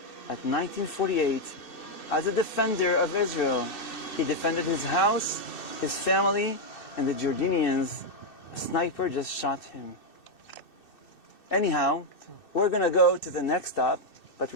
at 1948 as a defender of Israel. He defended his house, his family, and the Jordanians. A sniper just shot him. Anyhow, we're going to go to the next stop, but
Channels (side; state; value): right; late; 2.6 ms